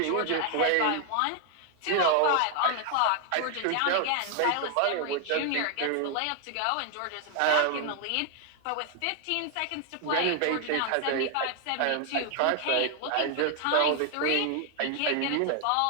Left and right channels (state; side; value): different; both; correlation 0.00